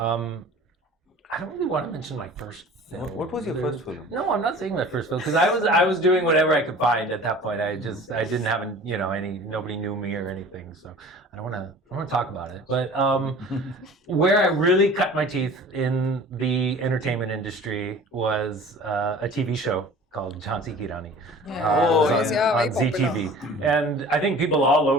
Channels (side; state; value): both; normal; correlation 0.44